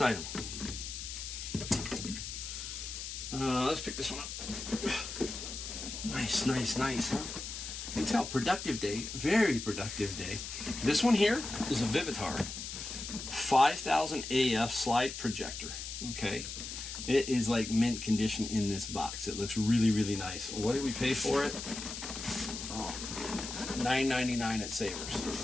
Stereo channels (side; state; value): left; noise; hiss, 7 dB below the sound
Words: item. Let's pick this one up. Nice, nice, nice, huh? You can tell, productive day, very productive day. This one here is a Vivitar 5000 AF slide projector, okay? It is like mint condition in this box. It looks really, really nice. What did we pay for it? Oh, $9.99 at Savers.